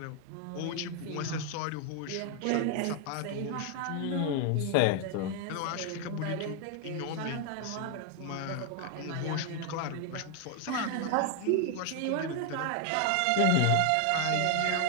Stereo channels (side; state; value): both; different; correlation 0.00